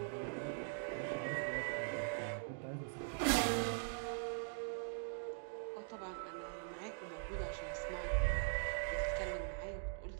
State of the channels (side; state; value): left; silent; digital silence